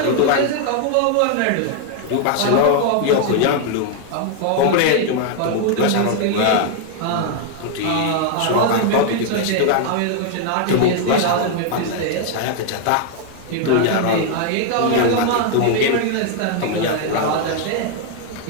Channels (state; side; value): different; both; correlation 0.00